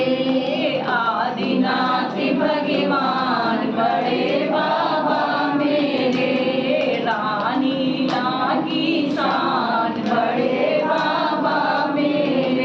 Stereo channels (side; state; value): both; identical; correlation 1.00